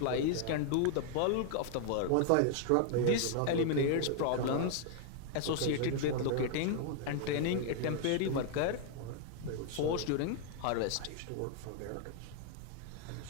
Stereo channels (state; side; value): different; both; correlation 0.00